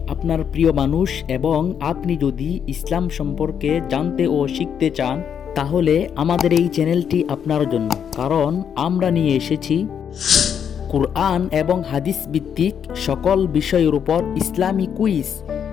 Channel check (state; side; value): quieter; right; 8.0 dB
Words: আপনার প্রিয় মানুষ এবং আপনি যদি ইসলাম সম্পর্কে জানতে ও শিখতে চান তাহলে আমাদের এই চ্যানেলটি আপনার জন্য, কারণ আমরা নিয়ে এসেছি কুরআন এবং হাদিস ভিত্তিক সকল বিষয়ের উপর ইসলামী কুইজ।